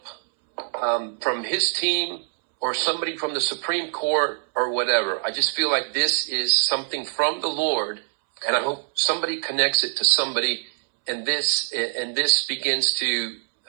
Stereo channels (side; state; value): left; silent; 63 dB below the other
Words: from his team, or somebody from the Supreme Court or whatever. I just feel like this is something from the Lord, and I hope somebody connects it to somebody, and this begins to,